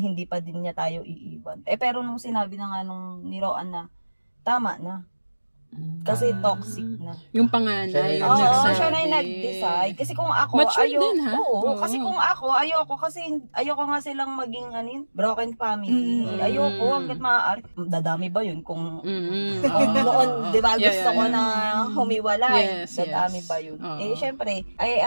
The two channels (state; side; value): inverted; both; correlation -1.00